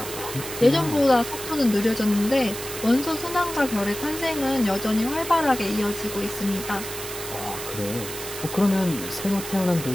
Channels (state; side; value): noise; right; hiss, 9 dB below the sound